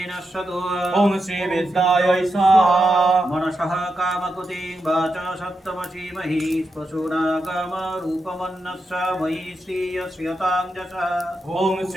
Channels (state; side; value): normal; both; correlation 0.87